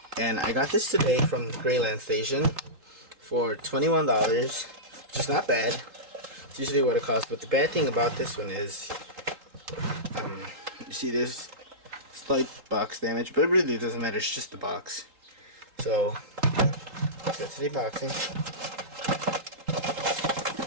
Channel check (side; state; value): left; late; 3.8 ms